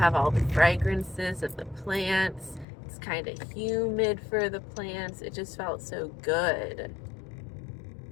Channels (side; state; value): right; drops out; at 2.7 s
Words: all the fragrances of the plants. It's kind of humid for the plants. It just felt so good